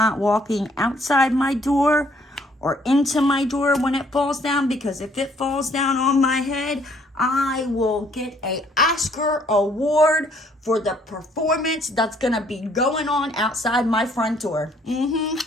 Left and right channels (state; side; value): normal; both; correlation 0.64